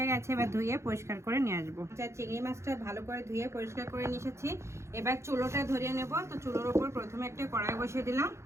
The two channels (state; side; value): late; left; 0.13 ms